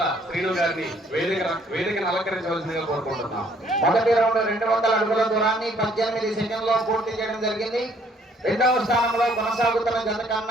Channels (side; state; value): both; normal; correlation 0.63